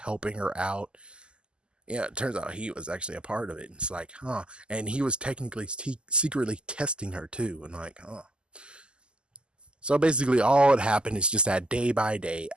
her out. Yeah, it turns out he was actually a part of it. It's like, huh. And he was technically secretly testing her too. And like, huh. So basically, all that happened is just that day by day,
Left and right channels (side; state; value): left; late; 0.049 ms